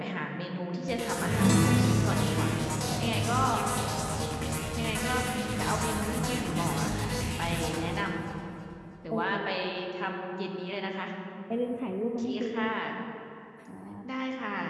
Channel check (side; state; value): both; identical; correlation 1.00